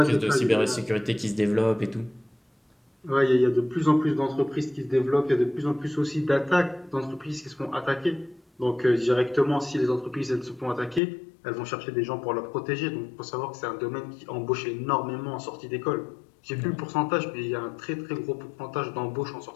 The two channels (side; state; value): right; drops out; at 11.0 s